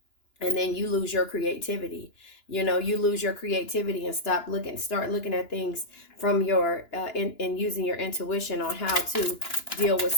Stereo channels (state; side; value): late; right; 2.9 ms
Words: And then you lose your creativity. You lose your creativity and start looking at things from your and using your intuition on how to deal with